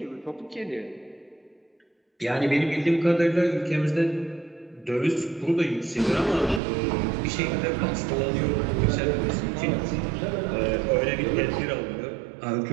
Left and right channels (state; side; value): drops out; left; at 6.6 s